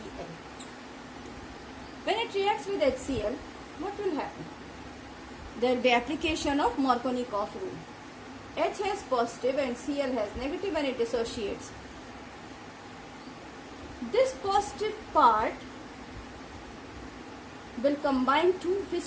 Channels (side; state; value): both; identical; correlation 1.00